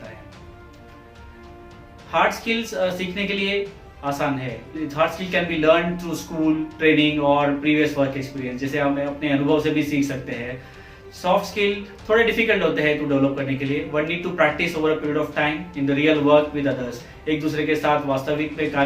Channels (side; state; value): both; identical; correlation 1.00